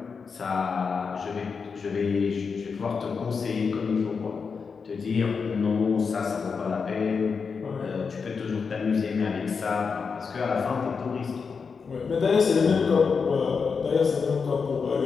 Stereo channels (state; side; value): quieter; right; 5.4 dB